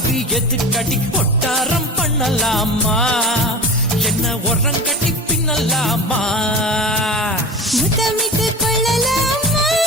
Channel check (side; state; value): both; normal; correlation 0.33